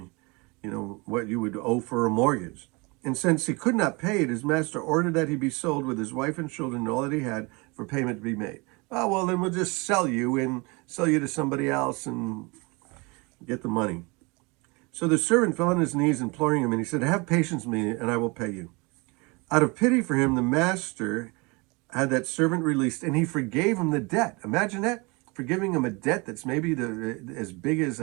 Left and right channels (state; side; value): quieter; left; 27.5 dB